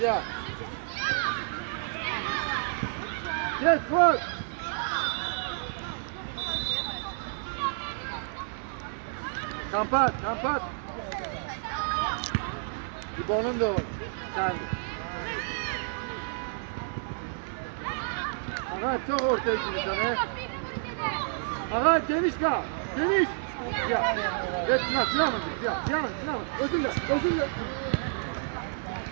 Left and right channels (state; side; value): silent; left; digital silence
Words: Git Fuat. Kampat. İbo'nun da o. Sen. Ağay çok ortaya gidiyorsun he. Ağay geniş kal. Geniş. Ya. Evet Sinan. Özürle.